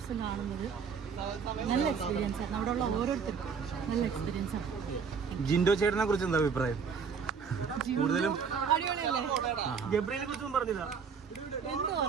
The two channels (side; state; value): left; quieter; 6.1 dB